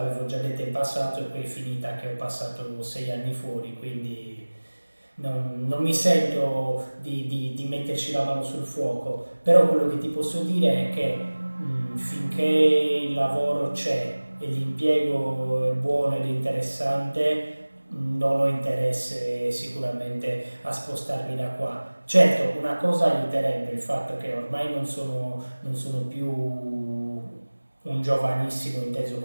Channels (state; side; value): inverted; both; correlation -1.00